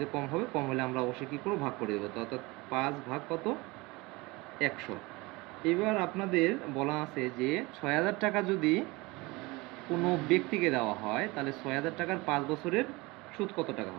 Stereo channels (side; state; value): left; quieter; 23.5 dB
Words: কম হবে, কম হলে আমরা অবশ্যই কী করবো, ভাগ করে দেবো। তো অর্থাৎ 5 ভাগ কত, 100। এবার আপনাদের বলা আছে যে 6,000 টাকা যদি কোনো ব্যক্তিকে দেওয়া হয়, তাহলে 6,000 টাকার 5 বছরের সুদ কত টাকা